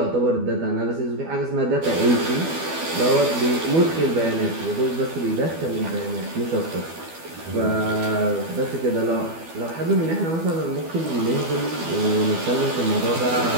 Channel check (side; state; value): left; late; 12 ms